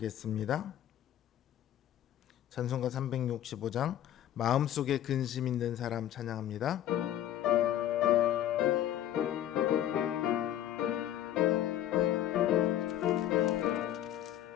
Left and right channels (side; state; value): right; quieter; 11.7 dB